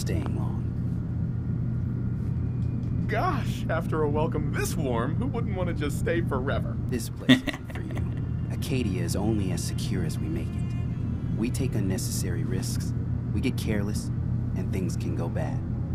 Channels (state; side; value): identical; both; correlation 1.00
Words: long. Gosh, after a welcome this warm, who wouldn't want to just stay forever? This place isn't for you. Acadia is only as secure as we make it. We take unnecessary risks, we get careless, and things can go bad.